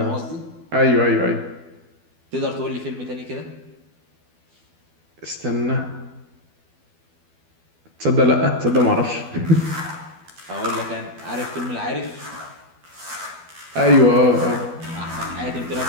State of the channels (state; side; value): late; left; 12 ms